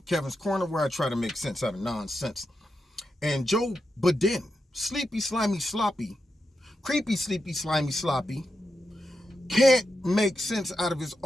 Kevin's Corner, where I try to make sense out of nonsense. And Joe Biden, sleepy, slimy, sloppy, creepy, sleepy, slimy, sloppy, can't make sense out of his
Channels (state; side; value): normal; both; correlation 0.87